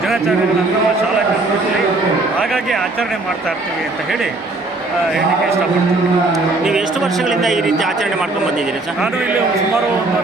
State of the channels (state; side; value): quieter; left; 3.1 dB